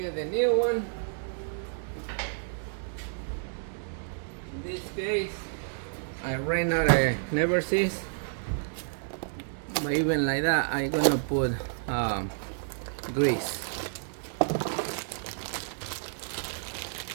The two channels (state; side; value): silent; left; digital silence